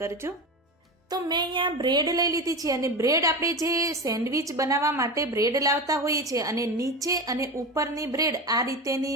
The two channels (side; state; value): both; normal; correlation 0.24